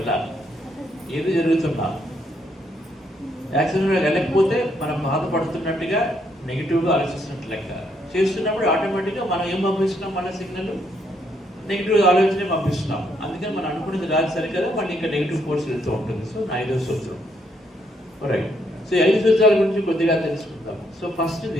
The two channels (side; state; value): both; normal; correlation 0.74